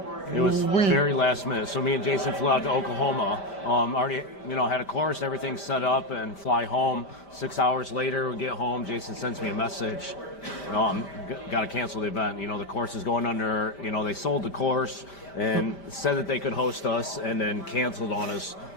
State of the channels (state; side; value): late; right; 5.1 ms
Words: It was very last minute. So me and Jason flew out to Oklahoma. Already, you know, had a course, everything set up, and fly home. 6 hours later, we get home. Jason sends me a message. You know, got to cancel the event. You know, the course is going under. You know, they sold the course and said that they could host us, and then canceled on us